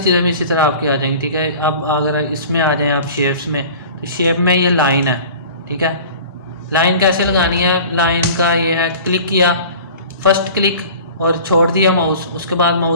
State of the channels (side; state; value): both; inverted; correlation -0.41